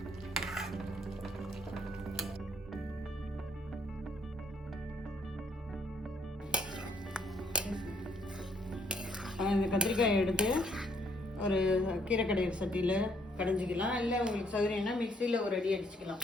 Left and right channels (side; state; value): both; normal; correlation 0.68